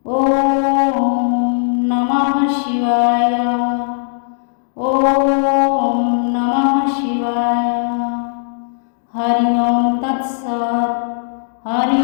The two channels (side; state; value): right; silent; digital silence